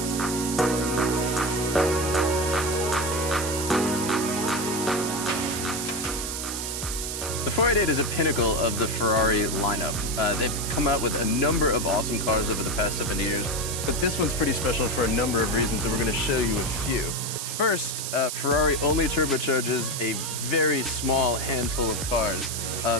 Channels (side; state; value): right; noise; hiss, 4 dB below the sound